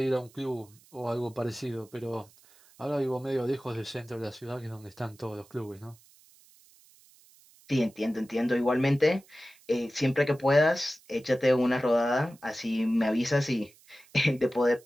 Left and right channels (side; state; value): right; noise; hiss, 27 dB below the sound